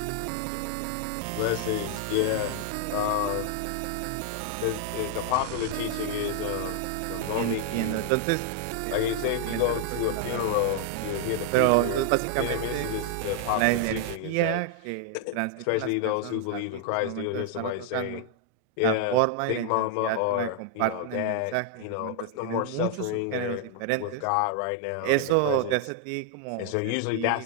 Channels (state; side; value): different; both; correlation 0.00